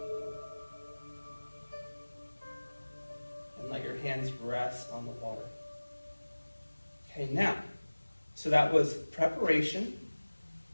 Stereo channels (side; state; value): both; inverted; correlation -1.00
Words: And let your hands rest on the water. Okay, now, so that was preparation